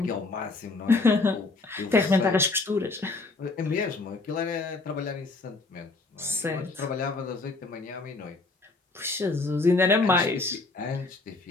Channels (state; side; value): quieter; right; 3.5 dB